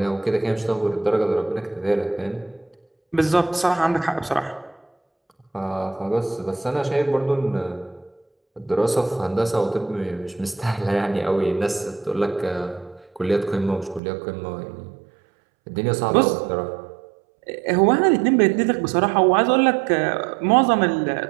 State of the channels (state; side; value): drops out; left; at 14.0 s